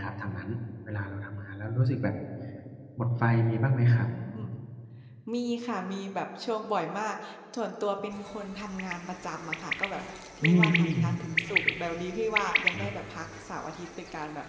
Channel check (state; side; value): identical; both; correlation 1.00